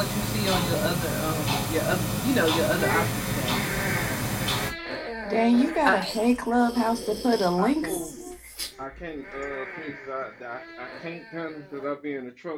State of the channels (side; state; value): both; identical; correlation 1.00